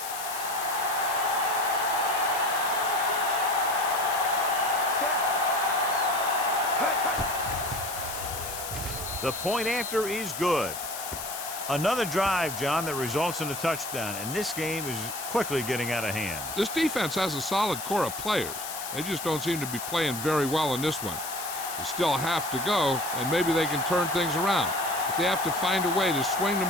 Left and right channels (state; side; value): noise; left; hiss, 8 dB below the sound